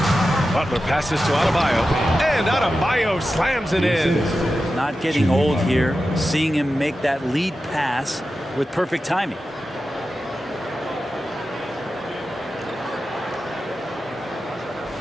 Butler passes to Adebayo, and Adebayo slams it in. Not getting old here, seeing him make that lead pass with perfect timing.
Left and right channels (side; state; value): both; normal; correlation 0.92